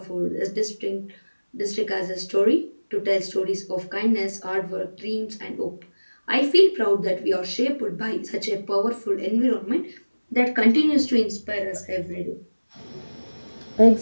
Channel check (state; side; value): inverted; both; correlation -1.00